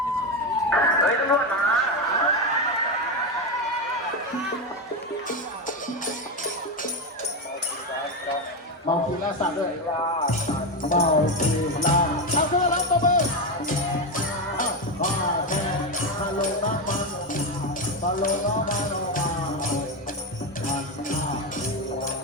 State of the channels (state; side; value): normal; both; correlation 0.12